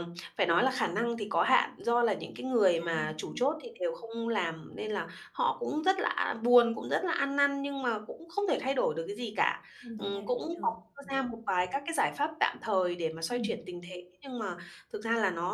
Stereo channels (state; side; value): identical; both; correlation 1.00